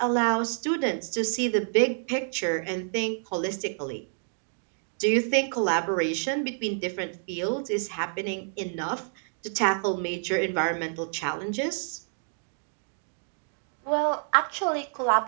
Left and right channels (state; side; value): silent; left; digital silence